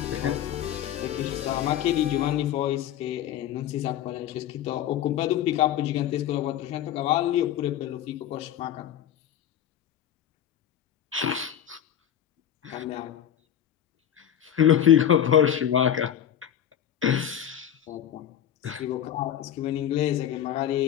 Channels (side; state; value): right; quieter; 10.3 dB